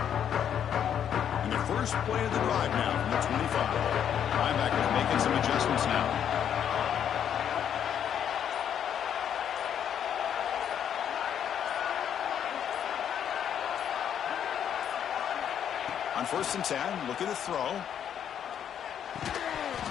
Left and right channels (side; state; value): right; quieter; 9.1 dB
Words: First play of the drive now from the 25. Linebackers making some adjustments now. On 1st and 10, looking to throw.